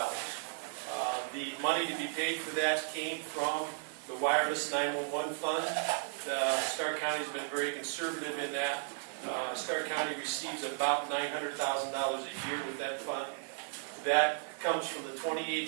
The money to be paid for that came from the wireless 911 fund. Stark County has been very conservative in that. Stark County receives about $900,000 a year with that fund. That comes from the 28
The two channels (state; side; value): silent; left; digital silence